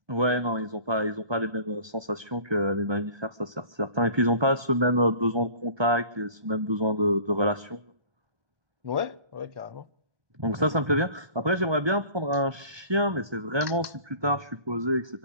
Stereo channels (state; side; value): late; left; 1.2 ms